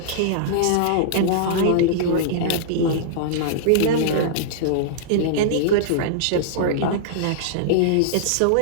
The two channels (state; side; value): different; both; correlation -0.02